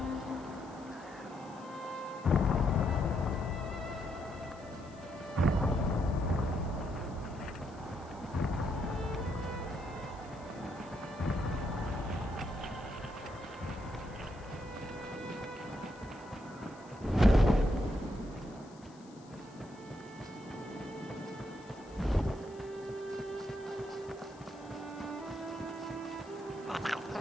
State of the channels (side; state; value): left; noise; hiss, 26 dB below the sound